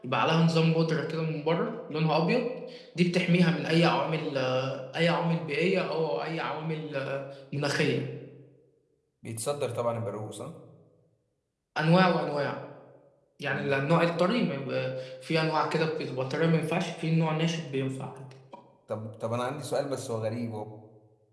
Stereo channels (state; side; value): identical; both; correlation 1.00